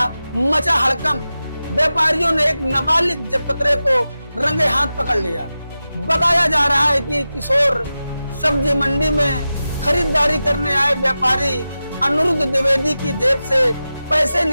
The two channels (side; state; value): both; inverted; correlation -0.93